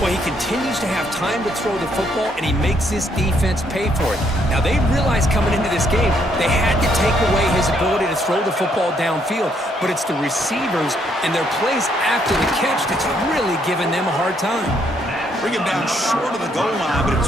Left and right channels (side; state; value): both; normal; correlation 0.71